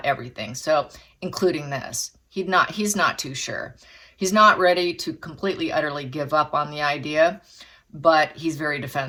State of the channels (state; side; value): identical; both; correlation 1.00